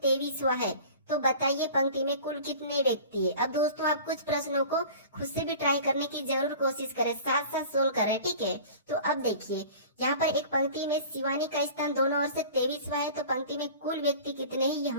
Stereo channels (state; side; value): inverted; both; correlation -0.41